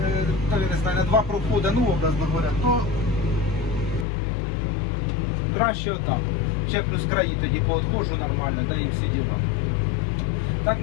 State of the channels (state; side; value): drops out; right; at 4.0 s